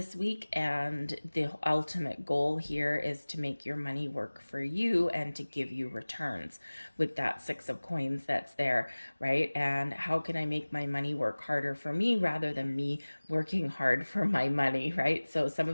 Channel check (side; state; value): both; inverted; correlation -1.00